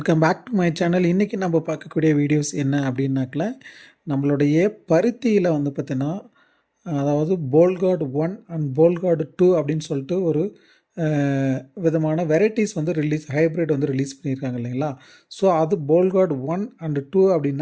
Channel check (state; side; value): identical; both; correlation 1.00